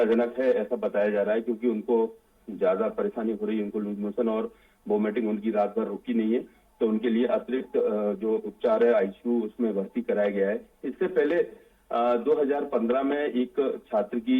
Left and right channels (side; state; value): both; identical; correlation 1.00